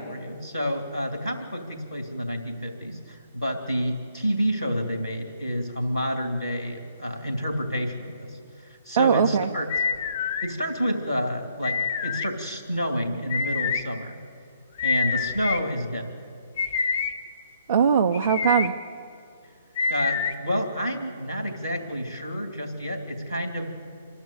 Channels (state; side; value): inverted; both; correlation -0.69